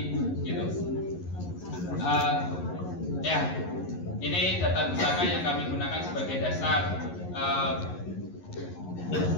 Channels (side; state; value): right; late; 11 ms